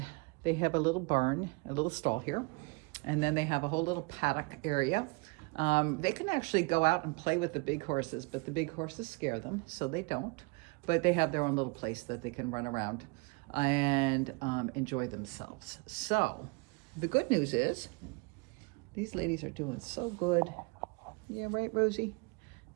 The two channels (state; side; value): quieter; left; 28.7 dB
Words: they have a little barn, a little stall here. And then they have a whole little paddock area. They can actually go out and play with the big horses, but the big horses scare them, so they don't. But they have their own little place that they can run around and enjoy themselves. So the good news is these ladies are doing so good. Yeah, right, Rosie?